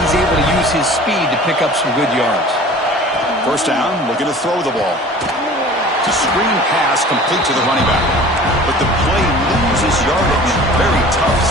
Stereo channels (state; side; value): normal; both; correlation 0.44